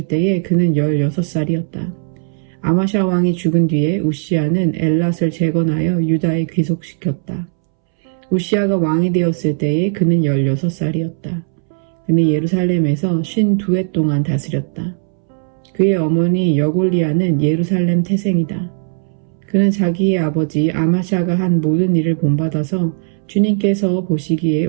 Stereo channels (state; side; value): silent; left; 67 dB below the other